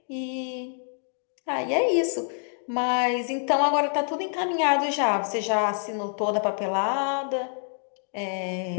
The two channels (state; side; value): silent; right; 59 dB below the other